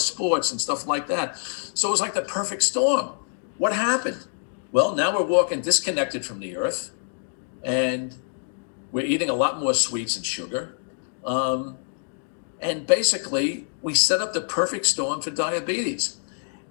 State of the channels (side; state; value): right; silent; digital silence